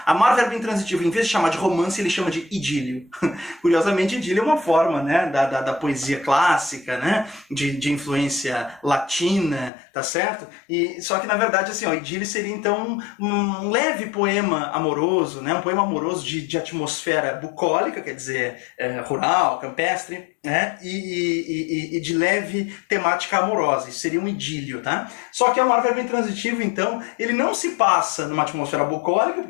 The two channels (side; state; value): right; drops out; at 9.7 s